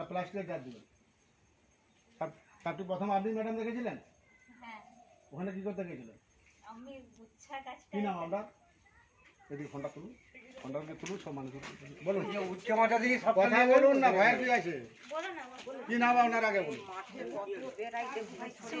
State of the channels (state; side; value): identical; both; correlation 1.00